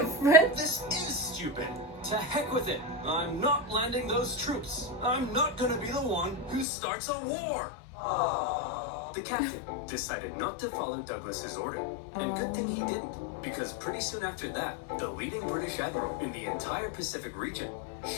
This is stupid. To heck with it. I'm not landing those troops. I'm not gonna be the one who starts a war. The captain decided not to follow Douglas's order. And good thing he didn't, because pretty soon after that, the leading British admiral in the entire Pacific region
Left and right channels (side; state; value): right; drops out; at 6.7 s